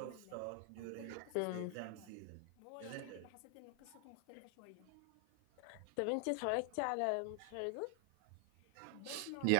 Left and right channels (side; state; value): both; different; correlation 0.00